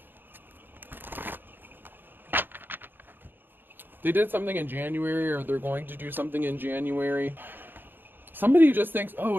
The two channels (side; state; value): left; late; 0.096 ms